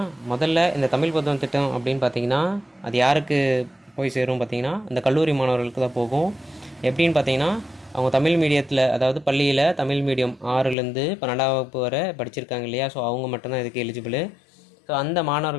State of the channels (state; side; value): drops out; right; at 10.8 s